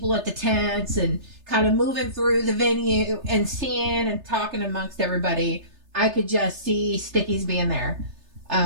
at the tents and kind of moving through the venue and seeing and talking amongst everybody, I could just see Stickies being there.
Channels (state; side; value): late; left; 3.3 ms